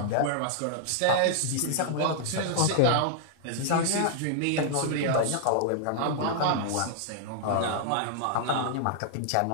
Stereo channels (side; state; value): both; different; correlation -0.01